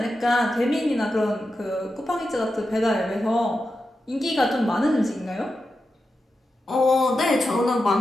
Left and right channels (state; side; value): normal; both; correlation 0.90